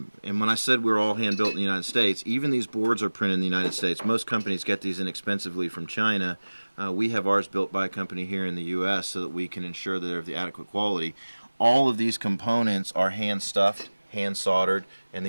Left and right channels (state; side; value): inverted; both; correlation -1.00